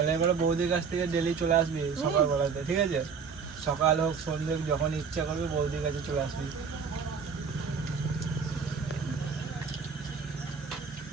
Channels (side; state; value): left; quieter; 5.8 dB